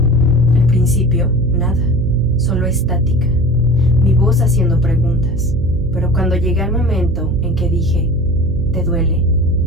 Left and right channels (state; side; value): noise; right; hum, 6 dB below the sound